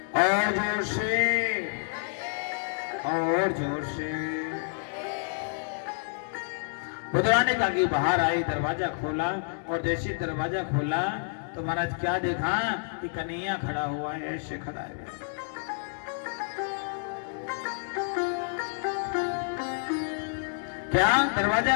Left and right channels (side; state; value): right; silent; digital silence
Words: और जोर से, और जोर से। विदुरानी का की बाहर आई, दरवाजा खोला और जैसे दरवाजा खोला तो महाराज क्या देखा कि कन्हैया खड़ा हुआ है, ऐसे खड़ा है। क्या? दरवाजा